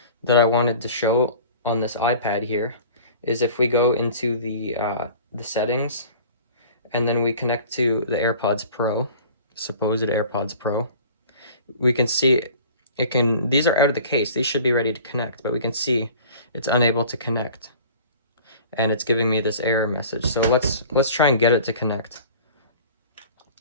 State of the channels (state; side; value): inverted; both; correlation -0.44